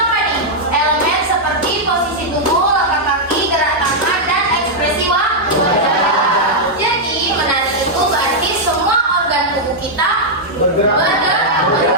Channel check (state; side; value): normal; both; correlation -0.05